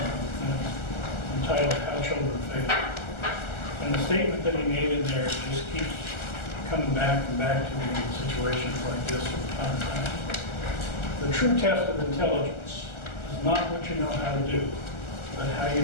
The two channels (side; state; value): right; late; 1.4 ms